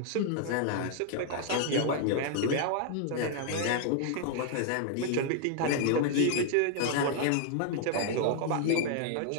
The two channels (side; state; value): both; different; correlation 0.00